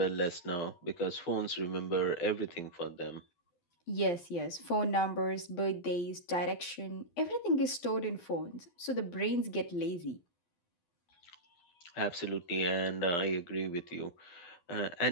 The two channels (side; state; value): right; late; 12 ms